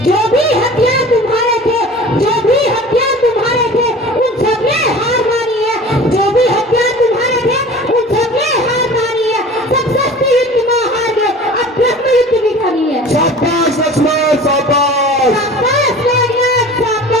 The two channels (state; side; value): normal; both; correlation 0.41